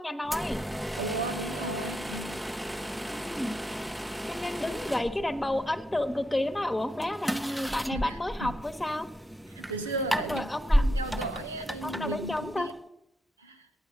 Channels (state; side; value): normal; both; correlation 0.83